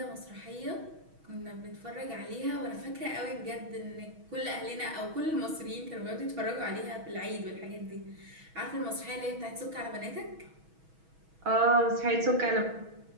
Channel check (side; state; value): left; late; 6.2 ms